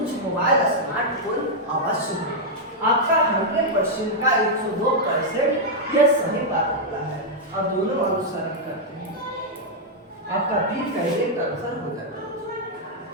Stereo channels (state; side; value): normal; both; correlation -0.04